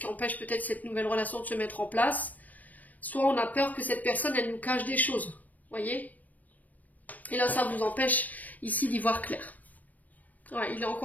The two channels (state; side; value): late; right; 0.078 ms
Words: empêche peut-être cette nouvelle relation de se mettre en place. Soit on a peur que cette personne, elle nous cache des choses, voyez? Et là ça vous empêche ici d'y voir clair. Ouais, il est